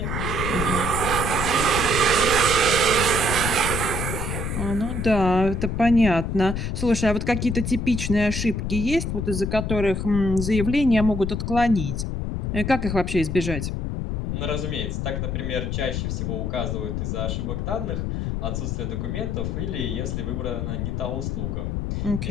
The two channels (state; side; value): noise; left; rumble, 2 dB below the sound